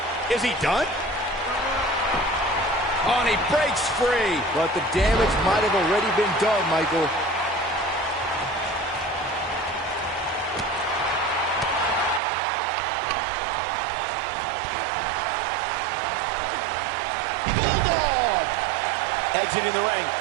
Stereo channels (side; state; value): left; drops out; at 12.2 s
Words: Is he done? Oh, and he breaks free. But the damage might have already been done, Michael. Exiting the ring.